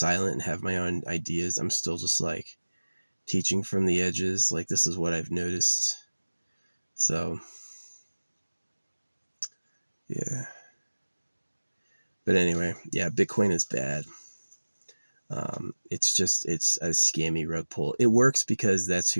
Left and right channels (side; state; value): both; inverted; correlation -1.00